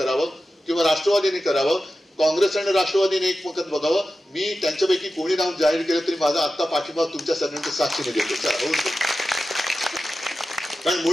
किंवा राष्ट्रवादीने करावं. काँग्रेस आणि राष्ट्रवादीने एकमत बघावं. मी त्यांच्यापैकी कोणी नाव जाहीर केलं तरी माझा आत्ता पाठिंबा तुमच्या सगळ्यांच्या साक्षीने देतो. कारण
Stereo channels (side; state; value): both; normal; correlation 0.93